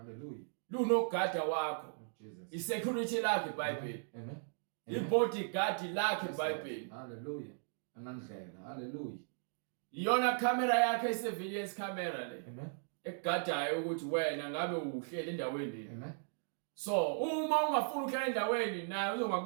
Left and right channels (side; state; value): left; silent; digital silence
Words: Lunogada wakho. Jesus. Isecurity lakhe iBhayibheli. Amen. Ibodyguard lakhe iBhayibheli. Hallelujah. Anandlela. Hallelujah. iyona camera yakhe surveillance camera le Amen. ekugadayo ukuthi wena ngabe uhlele endaweni. Amen. So uma ungafuna ukuhlala endaweni naye